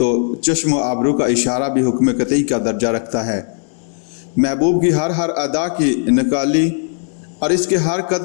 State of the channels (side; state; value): right; silent; 63 dB below the other